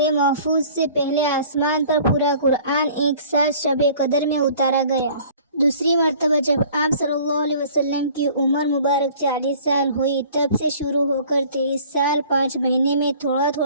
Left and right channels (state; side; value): inverted; both; correlation -0.50